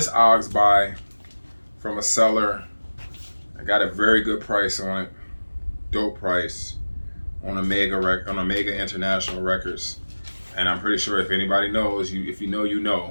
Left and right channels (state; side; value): inverted; both; correlation -1.00